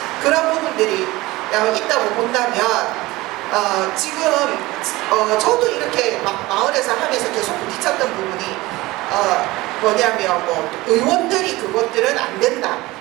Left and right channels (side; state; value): left; quieter; 19.9 dB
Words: 그런 부분들이 있다고 본다면 지금 저도 이렇게 막 마을에서 하면서 계속 부딪혔던 부분이 뭐냐면 뭐 의원들이 그것들은 안 된다